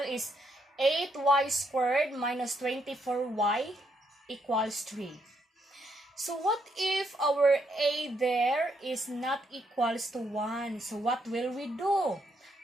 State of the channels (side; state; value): both; normal; correlation 0.75